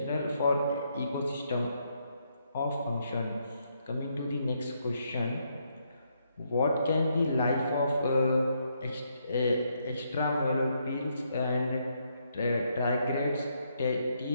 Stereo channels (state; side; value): inverted; both; correlation -0.76